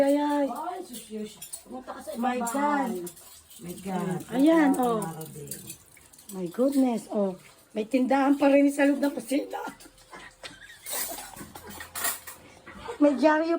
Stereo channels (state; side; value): identical; both; correlation 1.00